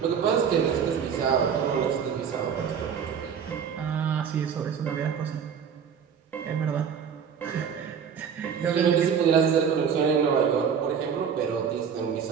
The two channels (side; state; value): left; quieter; 7.3 dB